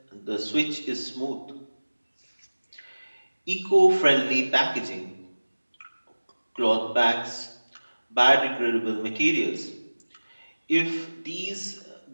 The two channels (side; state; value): both; inverted; correlation -1.00